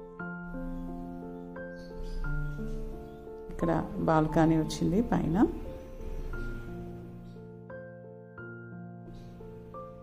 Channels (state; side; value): identical; both; correlation 1.00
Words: ఇక్కడ బాల్కనీ వచ్చింది పైన.